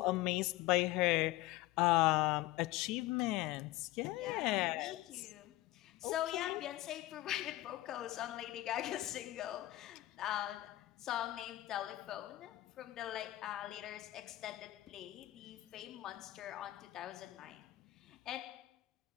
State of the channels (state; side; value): quieter; right; 16.9 dB